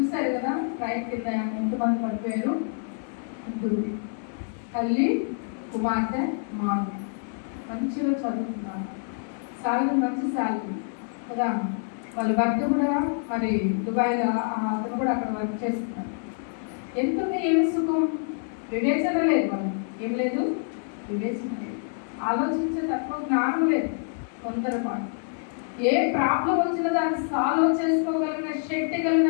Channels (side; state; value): right; silent; 60 dB below the other